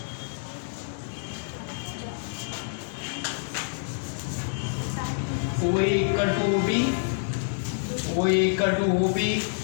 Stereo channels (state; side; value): silent; right; digital silence